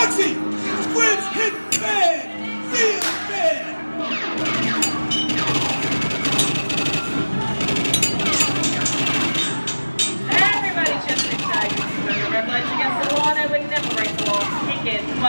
Squid's hit bad! Real bad! Everybody just inside. Remember, red lights against the law, and we never break the law. Kick it.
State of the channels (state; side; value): inverted; both; correlation -1.00